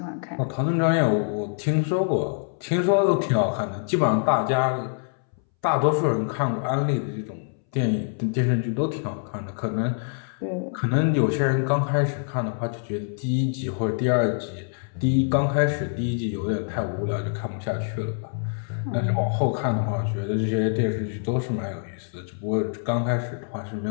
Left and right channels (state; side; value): silent; right; 62 dB below the other